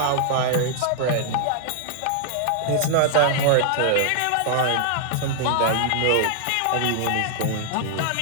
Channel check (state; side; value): different; both; correlation -0.01